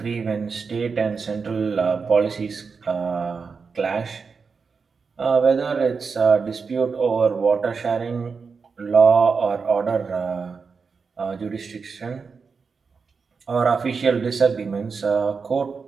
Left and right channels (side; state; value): left; quieter; 5.2 dB